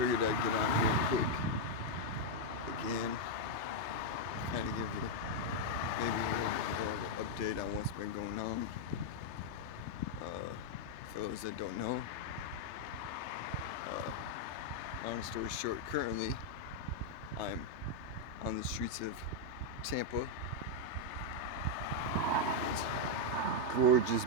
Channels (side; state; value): left; late; 3.3 ms